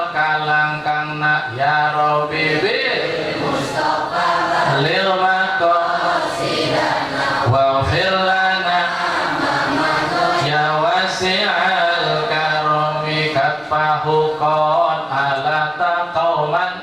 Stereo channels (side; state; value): both; identical; correlation 1.00